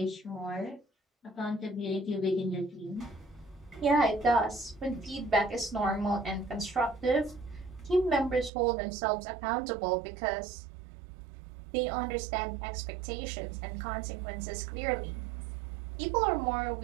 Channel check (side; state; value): left; drops out; at 8.5 s